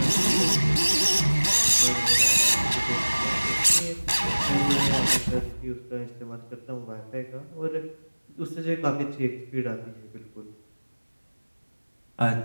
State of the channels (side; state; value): both; inverted; correlation -1.00